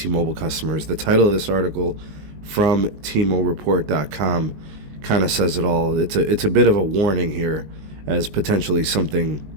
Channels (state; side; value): late; left; 19 ms